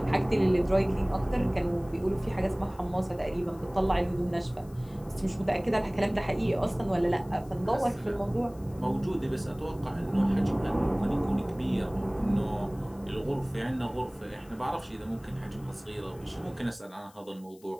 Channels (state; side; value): noise; left; hiss, 27 dB below the sound